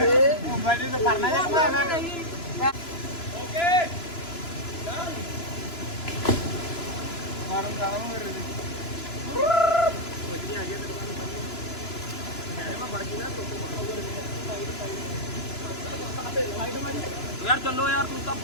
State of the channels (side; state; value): right; late; 2.9 ms